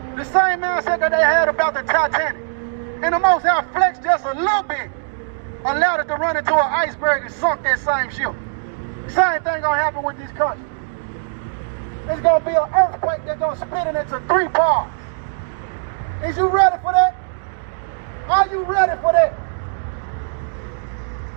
The same mindset that they had about the Titanic. And the Most High flexed just a little bit. Allowed it to run into an iceberg and sunk that same ship. Same thing gonna happen with this country. It's gonna be an earthquake that's gonna split it into 3 parts. Is you ready for that? Are you ready for that?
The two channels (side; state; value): left; silent; digital silence